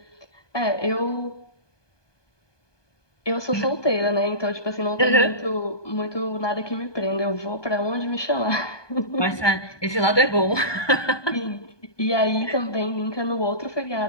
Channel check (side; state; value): right; late; 1.2 ms